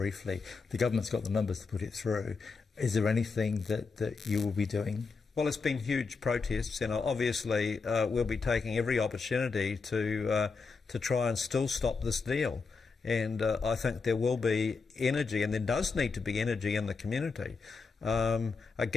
the government's got the numbers to put it through. Is there anything that you will be doing? Well, it's been huge protests, and obviously we'll be taking every opportunity to try and still stop this deal. And I think there will be energy, and there does need to be energy in the community.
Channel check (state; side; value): quieter; right; 4.7 dB